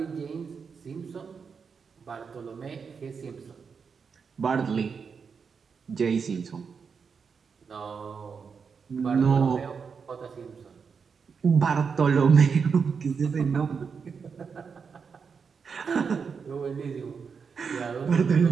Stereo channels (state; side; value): quieter; left; 5.9 dB